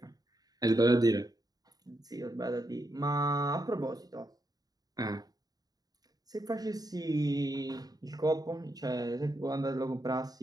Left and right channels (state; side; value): late; left; 0.18 ms